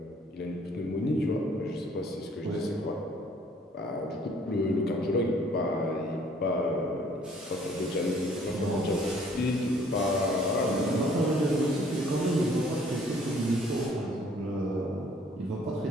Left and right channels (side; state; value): both; normal; correlation 0.59